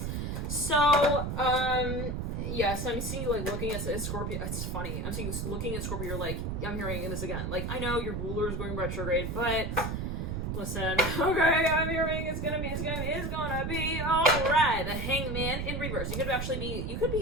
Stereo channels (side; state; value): right; noise; rumble, 3 dB below the sound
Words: so yes, I'm seeing you like looking at Scorpio. It's funny. I'm seeing you looking at Scorpio. You're like, I'm hearing this again. Like, I know your ruler is going retrograde, but listen, okay, I'm hearing it's gonna be all right. The hangman in reverse. You could